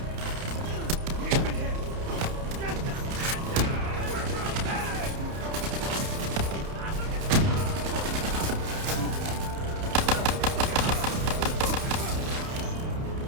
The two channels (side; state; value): left; late; 30 ms